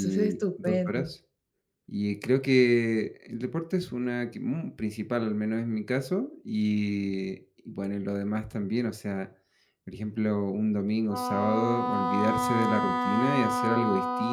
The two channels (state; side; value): identical; both; correlation 1.00